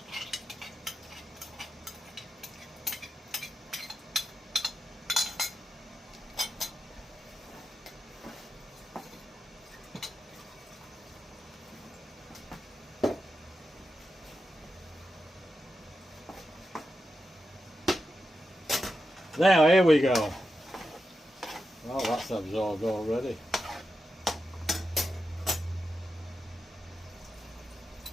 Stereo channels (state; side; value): normal; both; correlation 0.89